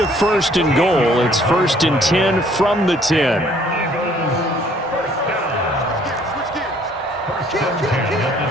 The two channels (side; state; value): both; normal; correlation 0.60